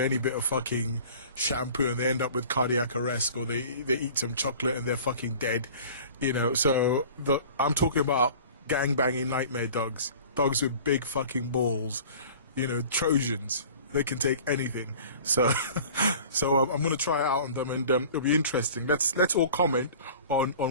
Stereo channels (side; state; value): both; inverted; correlation -0.44